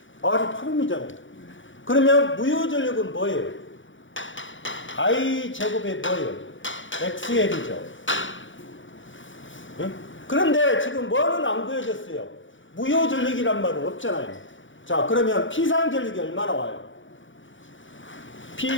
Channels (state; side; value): late; right; 0.56 ms